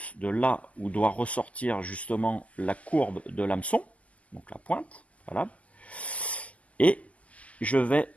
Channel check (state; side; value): late; right; 0.064 ms